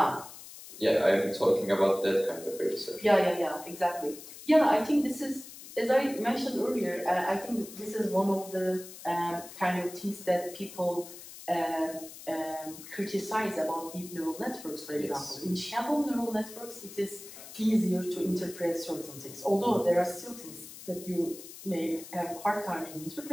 Yeah, I'm talking about that kind of research. Yeah, exactly. Yeah, I think this is, as I mentioned earlier, I think this is one of the kind of things that people criticize about deep neural networks, for example. Yes. In shallow neural networks, it is easier to interpret certain things, although there are still things that you may have a hard time in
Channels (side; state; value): left; noise; hiss, 15 dB below the sound